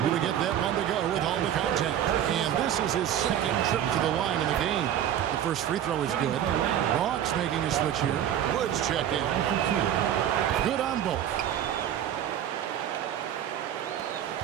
to get that one to go with all the contact. And this is his second trip to the line in the game. The first free throw is good. Hawks making a switch here. Woods check in. Good on both.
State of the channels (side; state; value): left; quieter; 10.5 dB